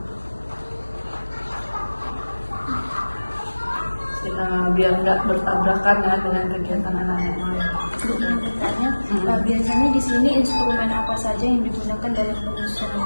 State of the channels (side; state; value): both; inverted; correlation -1.00